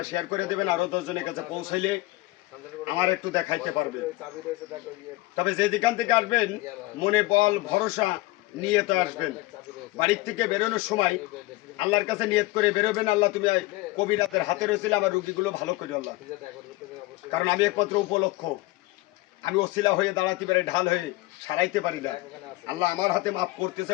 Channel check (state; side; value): quieter; right; 19.8 dB